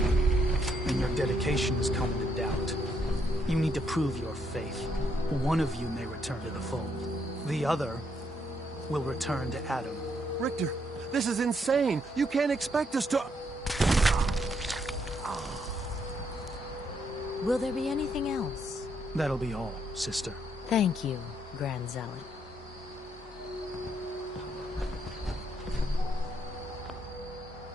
and your dedication is coming to doubt. You need to prove your faith. One of you may return to the fold. The other will return to Adam. Richter, this is insane. You can't expect us to... Will there be anything else? That'll be all, sister. Thank you, Grand Zealot.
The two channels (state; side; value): normal; both; correlation 0.74